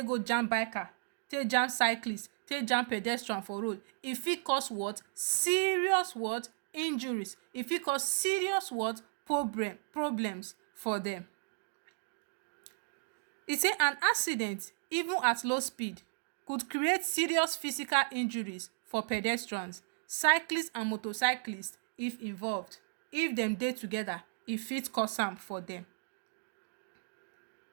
go jam biker, take jam cyclist, take jam pedestrian for road, e fit cause what? Serious what? Injuries. E fit cause serious what? Problems for them. E say an accident, even at low speed, could create serious physical injuries for pedestrians, cyclists and motorcyclists if involved. If them dey together, e fit cause am for them.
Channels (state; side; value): silent; left; digital silence